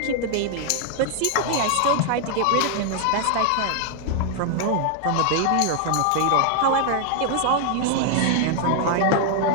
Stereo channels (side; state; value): both; different; correlation 0.00